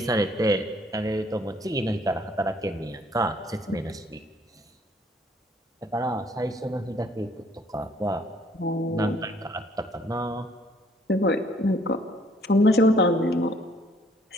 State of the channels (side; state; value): both; normal; correlation 0.62